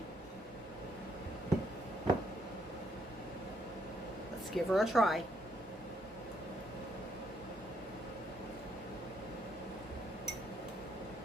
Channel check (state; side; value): normal; both; correlation 0.72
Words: Let's give her a try.